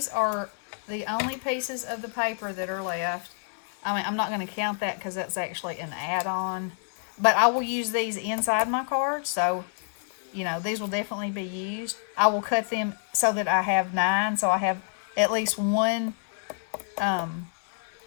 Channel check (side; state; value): right; silent; digital silence